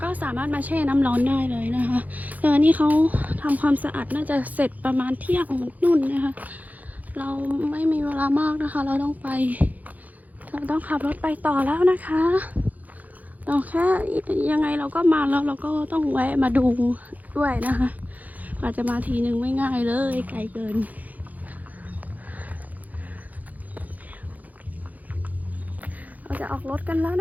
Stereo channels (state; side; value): late; left; 0.079 ms